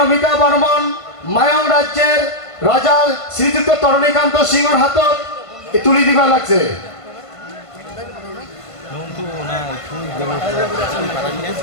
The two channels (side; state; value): right; late; 1.5 ms